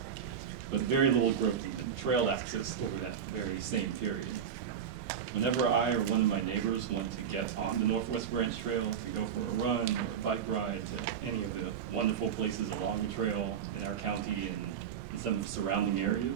but very little growth in the trail access over that very same period. Whenever I or one of my neighbors want to get on the Northwest Branch Trail to go for a run or a bike ride to any of the wonderful places along the trail in our county and in some of the surrounding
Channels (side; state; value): left; quieter; 8.0 dB